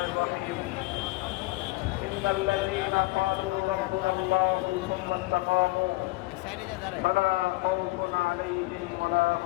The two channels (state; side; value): quieter; right; 21.6 dB